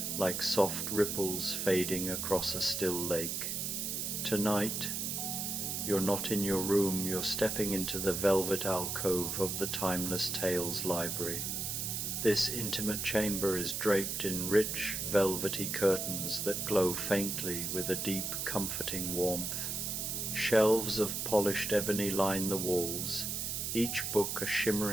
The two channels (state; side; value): noise; right; hiss, 2 dB below the sound